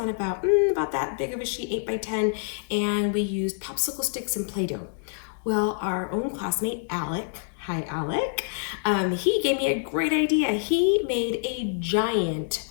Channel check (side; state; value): right; silent; digital silence